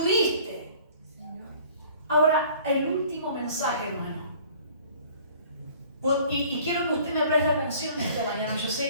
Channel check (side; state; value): both; inverted; correlation -0.51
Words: Ahora, el último mensaje, hermano. Y quiero que usted me preste atención esta mañana. Yo sé